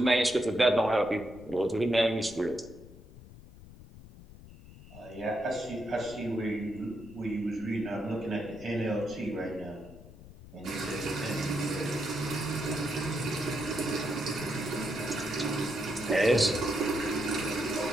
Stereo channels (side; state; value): left; noise; rumble, 18 dB below the sound